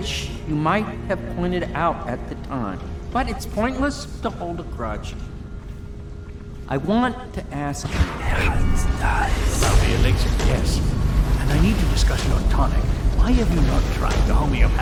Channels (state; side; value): identical; both; correlation 1.00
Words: you might have pointed out at the time. But it's pointless to hold a grudge. I want to ask you... About the elixir, yes. And I need to discuss your tonic. Why have you not tried the